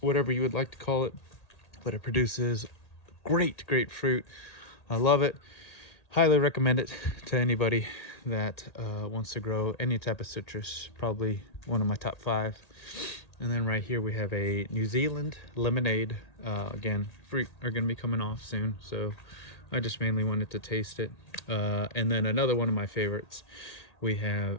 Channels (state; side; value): late; right; 1.8 ms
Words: whatever you would like to call it. But it produces great fruit. I love it. Highly recommend it to anybody that wants to grow any type of citrus. Probably one of my top 5. And then right here we have a New Zealand lemonade. Again, fruit are going to be coming off soon, so I just mainly wanted to taste it. And then another one of my favorites, we